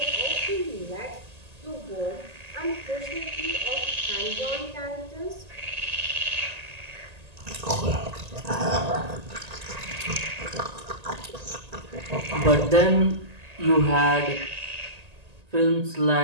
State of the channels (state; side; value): late; left; 1.8 ms